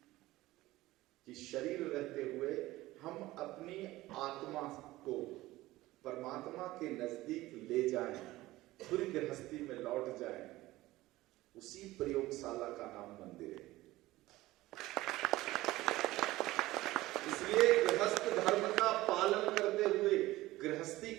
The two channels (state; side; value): quieter; left; 17.7 dB